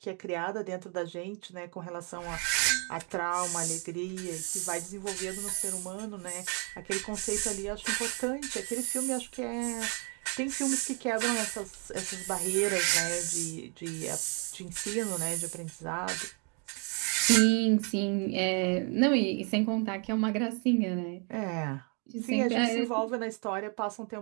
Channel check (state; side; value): quieter; left; 36.4 dB